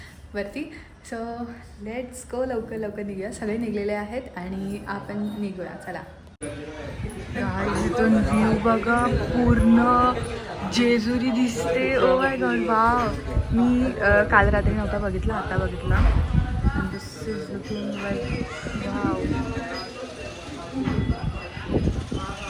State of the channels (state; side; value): identical; both; correlation 1.00